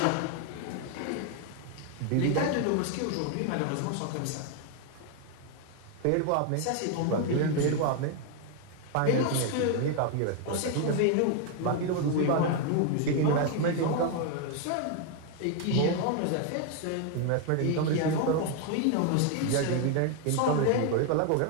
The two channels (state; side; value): different; both; correlation 0.01